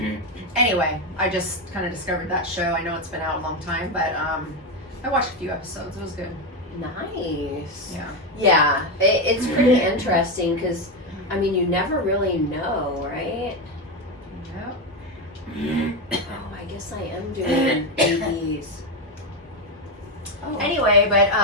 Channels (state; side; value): normal; both; correlation 0.10